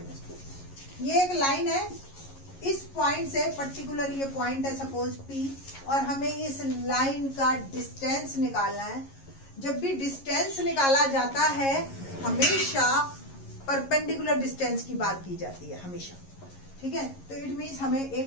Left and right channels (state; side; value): late; right; 11 ms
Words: 2। ये एक लाइन है। इस पॉइंट से पर्टिकुलर ये पॉइंट है सपोज P, और हमें इस लाइन का डिस्टेंस निकालना है। जब भी डिस्टेंस निकाला जाता है हमेशा परपेंडिकुलर डिस्टेंस की बात की जाती है हमेशा, ठीक है। तो इट मीन्स हमें